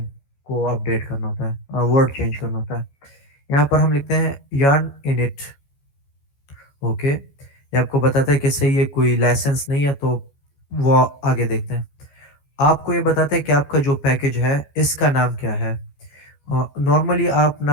को अपडेट करना होता है, वर्ड चेंज करना होता है। यहाँ पर हम लिखते हैं yarn init। ओके, ये आपको बताता है कि सही है, कोई लाइसेंस नहीं है, तो वो आगे देखते हैं। आपको ये बताता है कि आपका जो पैकेज है इसका नाम क्या है। नॉर्मली आप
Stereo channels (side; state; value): right; late; 14 ms